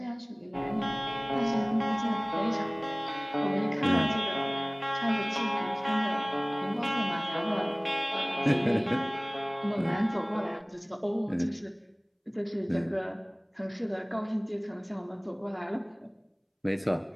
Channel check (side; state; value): both; identical; correlation 1.00